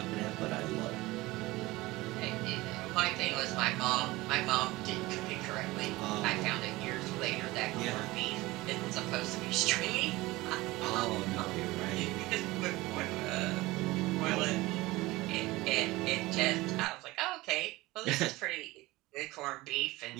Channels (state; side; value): quieter; left; 19.9 dB